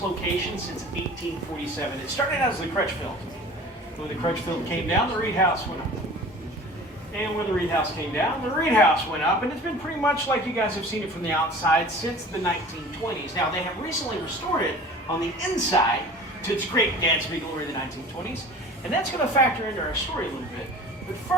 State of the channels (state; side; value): normal; both; correlation 0.42